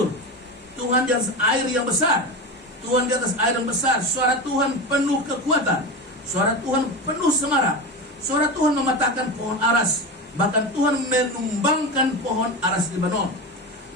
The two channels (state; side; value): normal; both; correlation 0.23